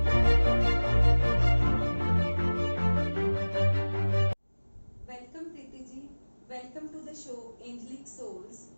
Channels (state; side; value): inverted; both; correlation -1.00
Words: Welcome Preeti ji, welcome to the show angelic souls.